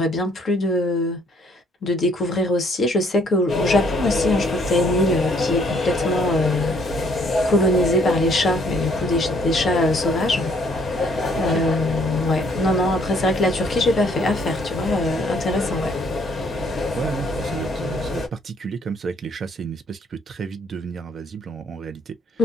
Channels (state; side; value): normal; both; correlation 0.64